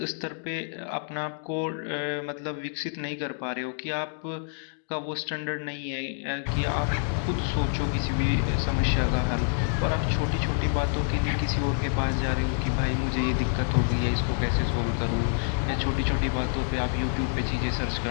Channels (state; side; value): silent; right; digital silence